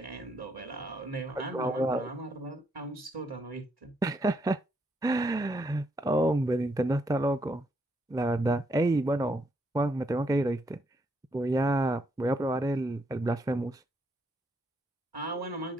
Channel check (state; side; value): normal; both; correlation 0.76